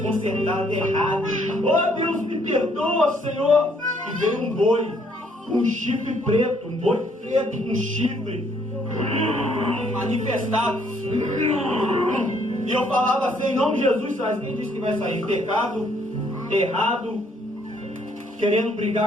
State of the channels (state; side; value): normal; both; correlation 0.67